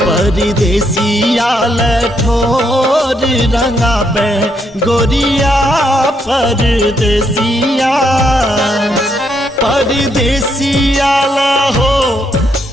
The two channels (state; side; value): normal; both; correlation 0.76